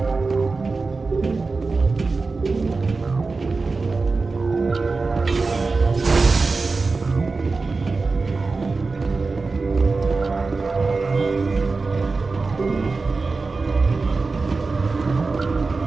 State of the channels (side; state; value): left; quieter; 4.0 dB